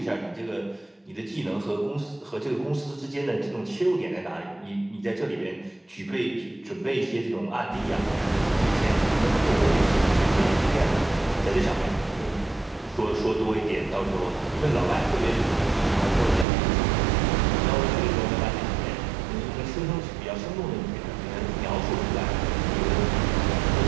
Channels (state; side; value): drops out; left; at 16.4 s